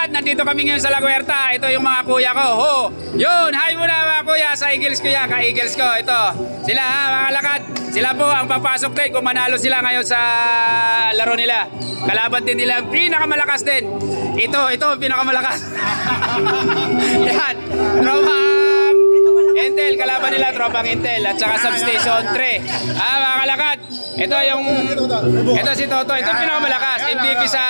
Nandito kami ngayon sa La Huerta. Ito yung mga kuya ko. Ho! Yun! Hi muna mga kuya sa Eagles kuya. Ka-Eagles ko. Ito. Sila ha mga kalakad. Sila po ang papasok din kung manalo sila ngayon sa laro nila. Kalaban din nila. Pinakamalakas din. Ito pinakamalakas. Yan. Tropang Intel. Kalaban nila Tropang Intel. At saka Substation 3. Mga kalakad. Ito si Toto. Ito pinakamalakas. MVP sa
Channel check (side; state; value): both; inverted; correlation -1.00